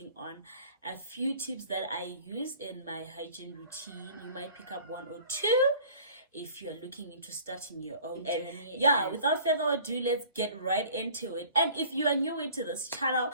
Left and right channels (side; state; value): both; inverted; correlation -0.48